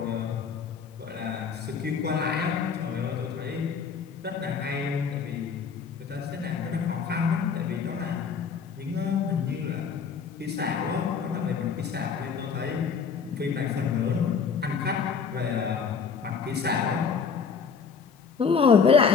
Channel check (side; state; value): right; quieter; 5.9 dB